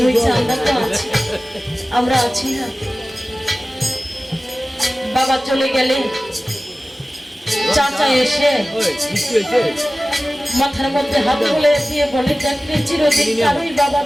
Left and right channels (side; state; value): both; normal; correlation 0.97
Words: হয়েছে, আমরা তো আছি, আমরা আছি না। বাবা চলে গেলে চাচা এসে মাথার মধ্যে হাত বলে দিয়ে বলে দেখলে চিরদিন কারোই বাবা